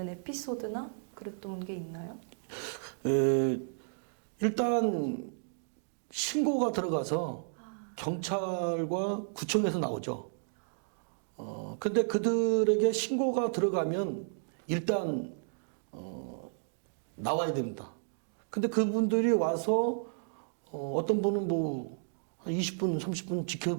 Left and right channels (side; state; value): left; silent; digital silence